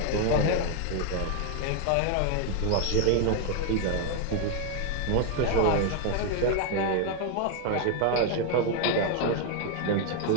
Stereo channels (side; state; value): both; different; correlation 0.01